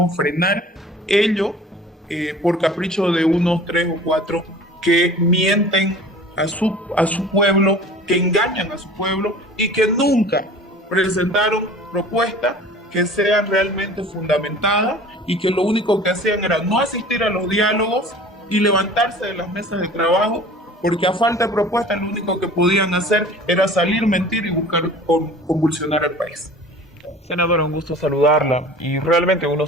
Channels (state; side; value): normal; both; correlation 0.44